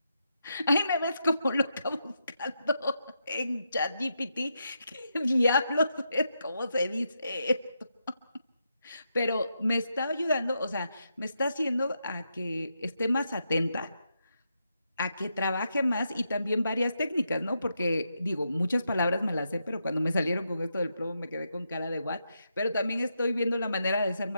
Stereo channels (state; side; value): inverted; both; correlation -0.83